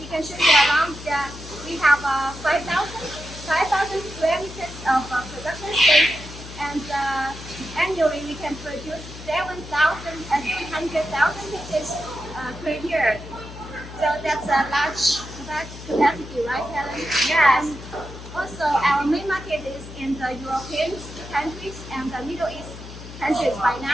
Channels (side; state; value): left; noise; hum, 13 dB below the sound